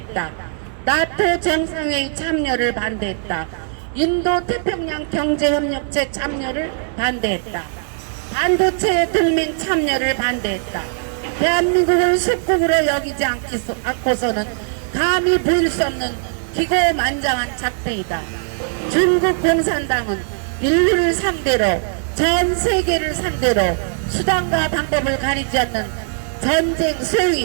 나토 정상회의 참여를 반대했다. 인도 태평양 경제협력체 참여를 반대했다. 반도체 동맹 참여를 반대했다. 대한민국을 속국으로 여기지 않고서는 감히 보일 수 없는 기고만장한 작태이다. 중국 공산당은 인류를 상대로, 전 세계를 상대로 수단과 방법을 가리지 않는 전쟁,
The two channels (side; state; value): left; silent; digital silence